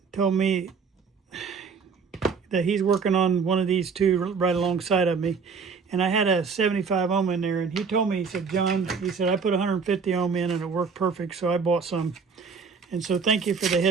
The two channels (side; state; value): left; quieter; 5.5 dB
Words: told me that he's working on one of these two right alongside of me. And I had a 75 ohm in there, and he told me, he said, John, he said, I put 150 ohm in and it worked perfect, so I bought some. And so thank you for the